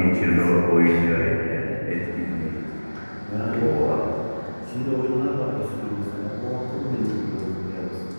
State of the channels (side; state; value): both; inverted; correlation -1.00